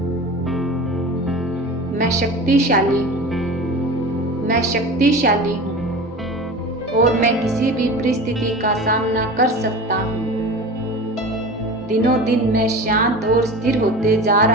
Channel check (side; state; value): both; normal; correlation 0.33